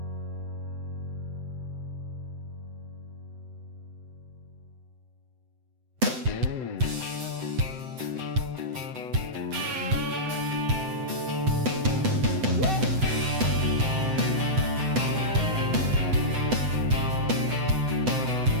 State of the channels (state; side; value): late; left; 7.8 ms